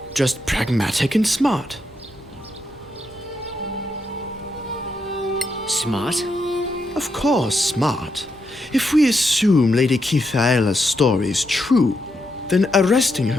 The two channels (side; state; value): both; normal; correlation 0.82